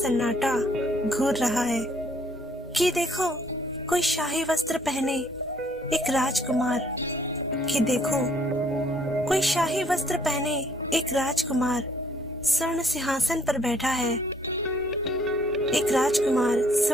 घूर रहा है कि देखो कोई शाही वस्त्र पहने एक राजकुमार, कि देखो कोई शाही वस्त्र पहने एक राजकुमार स्वर्ण सिंहासन पर बैठा है। एक राजकुमार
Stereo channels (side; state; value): both; normal; correlation 0.64